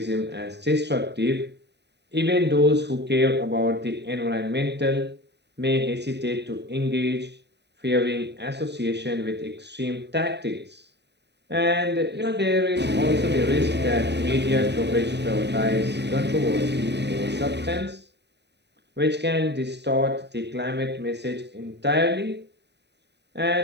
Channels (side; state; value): left; late; 0.50 ms